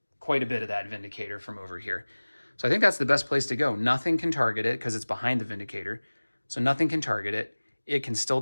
quite a bit of that Vindicator from over here. So I think that's the best place to go. Nothing can target it because it's behind the Vindicator. So nothing can target it. It can still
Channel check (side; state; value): both; inverted; correlation -1.00